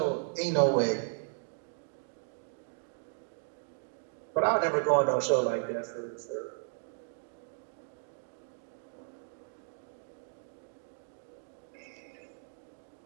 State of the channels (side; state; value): left; silent; digital silence